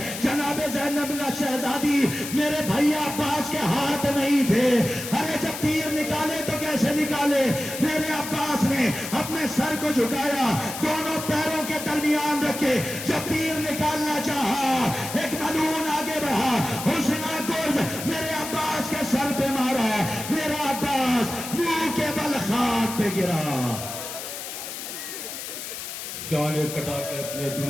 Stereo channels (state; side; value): noise; left; hiss, 8 dB below the sound